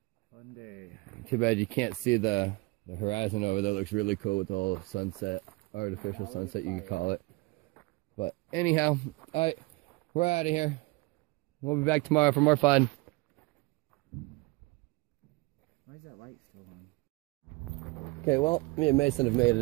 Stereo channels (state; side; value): quieter; left; 24.4 dB